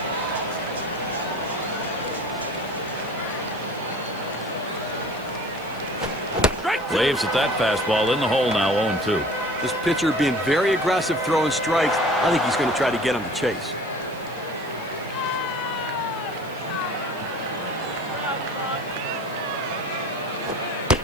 Waves at that fastball in the hole now. 0-2. This pitcher being very aggressive throwing strikes. I think he's going to try to get him to chase.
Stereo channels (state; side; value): noise; left; hiss, 23 dB below the sound